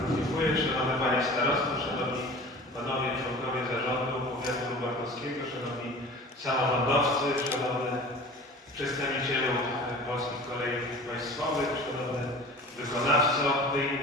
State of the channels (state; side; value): normal; both; correlation 0.40